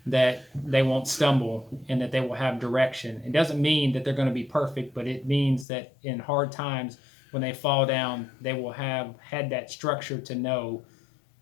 that they won't stumble and that they will have direction. It doesn't mean that they're going to be perfect, but it means that in hard times, when they fall down, they will have had that structure to know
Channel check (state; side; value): drops out; right; at 5.7 s